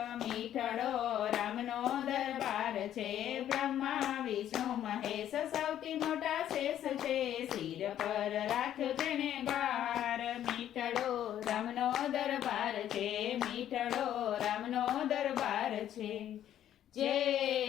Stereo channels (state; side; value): quieter; right; 11.1 dB